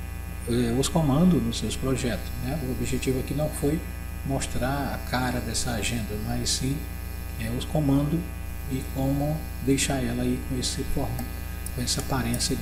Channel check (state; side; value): identical; both; correlation 1.00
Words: os comandos nos seus projetos, né? O objetivo aqui não foi mostrar a cara dessa agenda, mas sim os comandos e como deixar ela aí com esse formato, com essa aparência